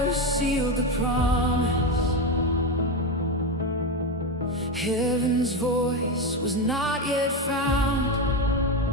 sealed the promise. Heaven's voice was not yet found.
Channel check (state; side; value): normal; both; correlation 0.13